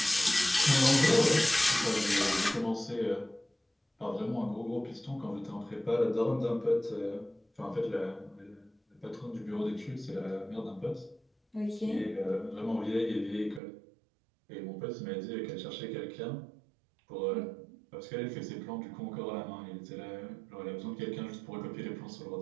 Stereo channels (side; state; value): left; drops out; at 13.6 s